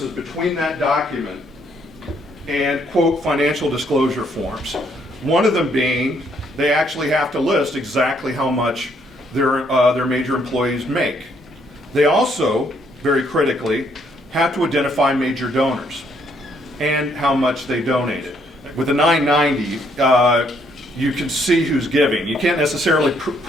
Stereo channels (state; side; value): normal; both; correlation 0.70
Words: between that document and, quote, financial disclosure forms. One of them being they actually have to list exactly how much their major employees make. They also, very critically, have to identify major donors and how much they donated. With the 990, you can see who's giving. You can't necessarily